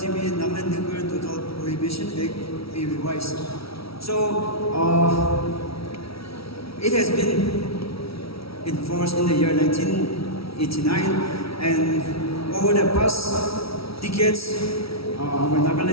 Nagaland Nuclear Total Prohibition Act be revised? So it has been enforced in the year 1989, and over the past decades, our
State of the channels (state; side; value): late; right; 0.76 ms